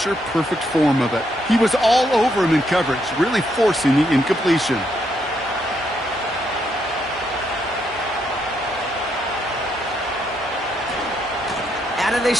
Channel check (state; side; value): normal; both; correlation 0.76